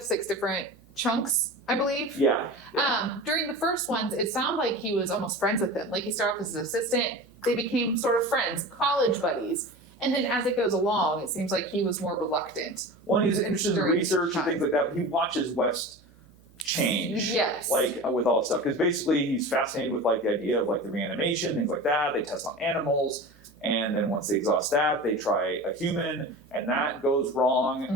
6 different chunks, I believe. Yeah. During the first ones, it sounded like he was almost friends with him. Like he started off as an assistant, they became sort of friends, college buddies. And then as it goes along, it seems like he was more reluctant. Well, he's interested in research and things like that. He watches West change. Yes. Like with all this stuff. Because basically he's fascinated with like the idea of like the reanimation, things like that. They test on animals. And then once they exhaust that, they try a human, and that goes wrong.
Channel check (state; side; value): noise; right; hum, 28 dB below the sound